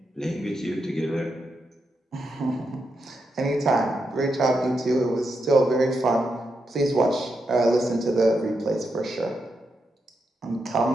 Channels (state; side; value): normal; both; correlation 0.84